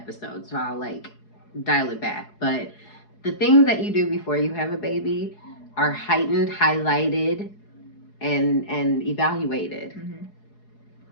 so I'll, like, dial it back. But the things that you do before you have a baby are heightened, highlighted, and evaluated.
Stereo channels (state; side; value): late; right; 4.8 ms